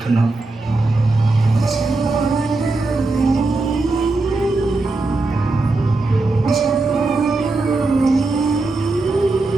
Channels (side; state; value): left; quieter; 3.3 dB